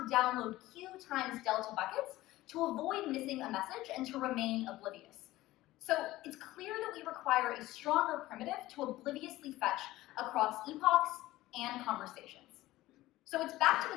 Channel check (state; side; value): quieter; right; 16.9 dB